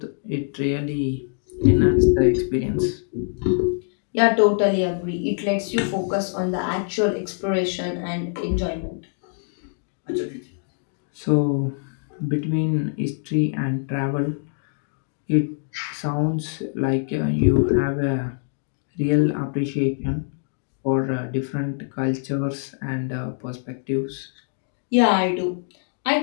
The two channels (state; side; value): silent; right; digital silence